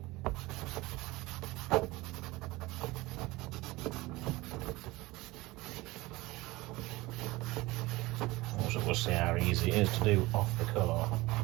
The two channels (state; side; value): quieter; left; 20.6 dB